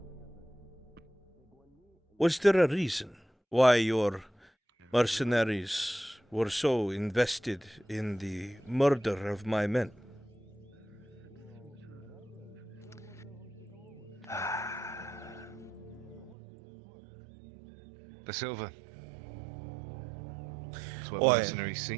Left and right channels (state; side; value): drops out; left; at 16.4 s